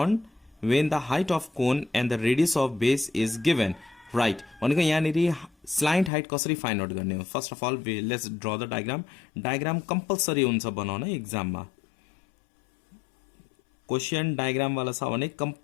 when the height of cone and the radius of base is given, right? भनेको यहाँनिर स्लाइन्ट हाइट कसरी फाइन्ड आउट गर्ने हो। First of all let's draw the diagram. Diagram compulsory हुन्छ बनाउन एक्जाममा। Question diagram वाला छ भने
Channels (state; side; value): drops out; right; at 6.1 s